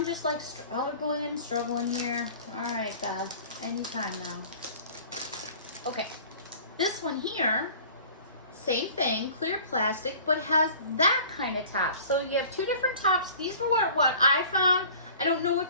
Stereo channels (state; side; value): inverted; both; correlation -0.46